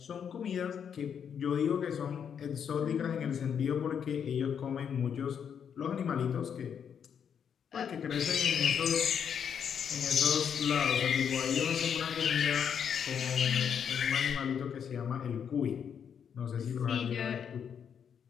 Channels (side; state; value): right; quieter; 7.7 dB